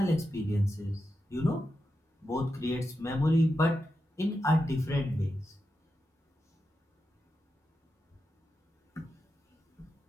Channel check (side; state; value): both; normal; correlation 0.89